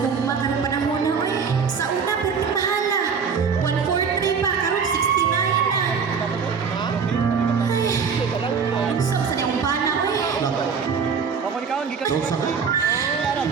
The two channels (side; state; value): left; quieter; 6.1 dB